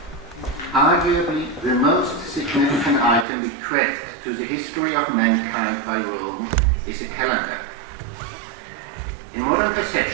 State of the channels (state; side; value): drops out; left; at 3.2 s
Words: arguably the most significant item bequeathed to the history of mankind by Rome is a calendar. In modern